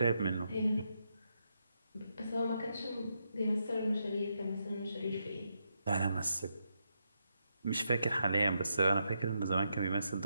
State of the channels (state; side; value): inverted; both; correlation -0.82